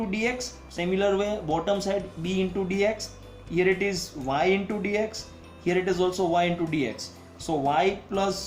dx, similar way bottom side b into dx, here it is y into dx, here it is also y into dx. So y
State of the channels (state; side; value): identical; both; correlation 1.00